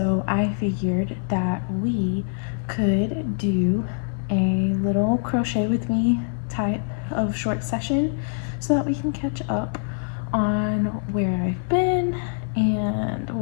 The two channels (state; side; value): silent; right; 62 dB below the other